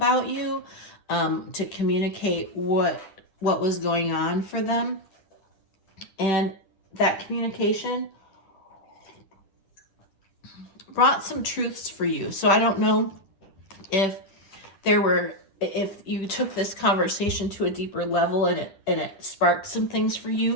you, to communicate what was going on for them. And that communication brought some truths for you. So I don't know if you took this conversation to a deeper level and it sparked some things for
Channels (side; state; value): right; late; 10 ms